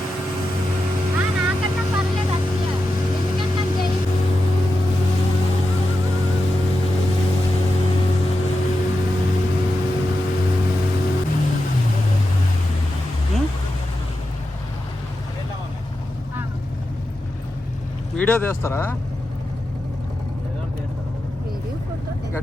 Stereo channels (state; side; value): normal; both; correlation 0.90